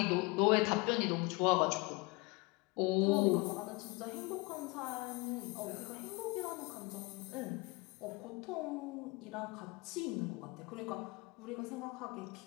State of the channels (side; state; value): right; quieter; 25.5 dB